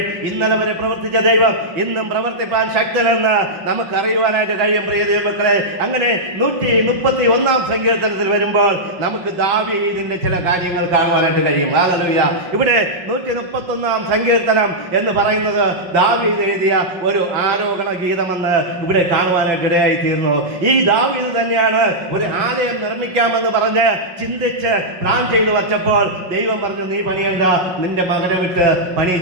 ഇന്നലെ വരെ പ്രവർത്തിച്ച ദൈവം ഇന്നും പ്രവർത്തിപ്പാൻ ശക്തനെന്ന് നമുക്ക് അറിയുവാനായിട്ട് കഴിയും. പ്രിയ ദൈവമക്കളെ, അങ്ങനെ 131-ാം സങ്കീർത്തനത്തിൽ വരുമ്പോൾ നമുക്ക് ദാവീദിന്റെ ചില കാര്യങ്ങൾ കാണുവാനായിട്ട് കഴിയും. ഹല്ലേലൂയ. ഇവിടെ 131-ാം സങ്കീർത്തനം എന്ന് പറയുന്നത് ദാവീദ് എഴുതിയ ഒരു ആരോഹണ ഗീതമെന്ന് ഇവിടെ കാണുവാനായിട്ട് ഇടയായി തീർന്നു. ഈ ദാവീദ് തന്നെയാണ് ഒരു ആലയം നിർമ്മിക്കാമെന്ന് പറഞ്ഞ് ചിന്തിച്ച് പ്ലാൻ ചെയ്തു വച്ചപ്പോൾ ദൈവം പറഞ്ഞു, നീ പണിയണ്ട, നിന്റെ മകനെ വിട്ട്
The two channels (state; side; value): late; left; 5.4 ms